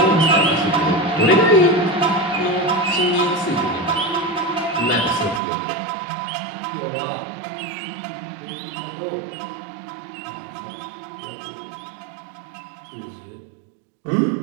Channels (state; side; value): drops out; left; at 5.4 s